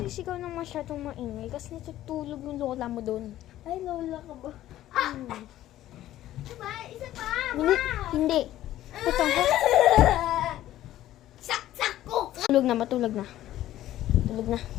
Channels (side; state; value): right; quieter; 13.7 dB